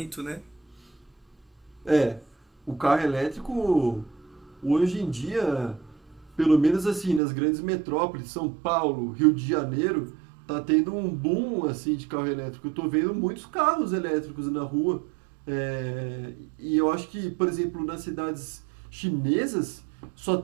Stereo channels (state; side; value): drops out; left; at 7.2 s